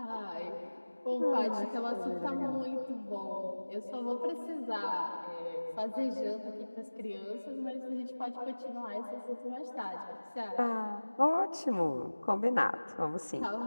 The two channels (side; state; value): both; inverted; correlation -1.00